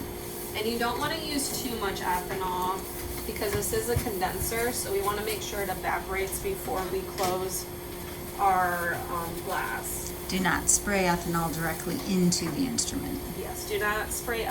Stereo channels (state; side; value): identical; both; correlation 1.00